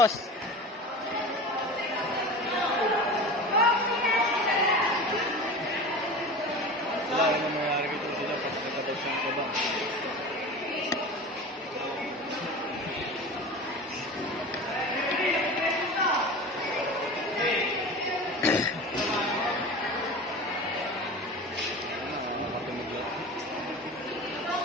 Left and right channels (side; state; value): both; normal; correlation 0.33